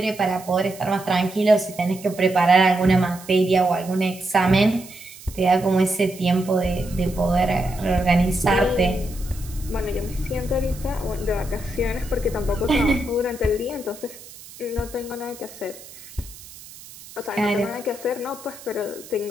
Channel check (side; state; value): right; noise; hiss, 18 dB below the sound